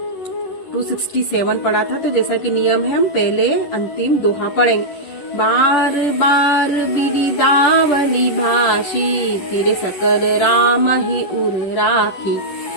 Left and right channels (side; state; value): right; late; 11 ms